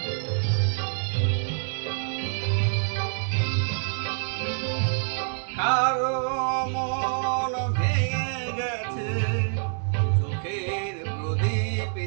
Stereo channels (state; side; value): silent; left; 60 dB below the other